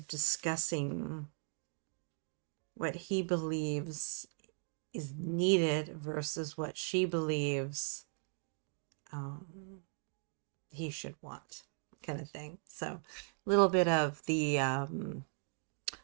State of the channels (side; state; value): left; silent; 52 dB below the other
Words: discussing what he believes is needed versus what she believes he should want, kind of thing. So a little bit of the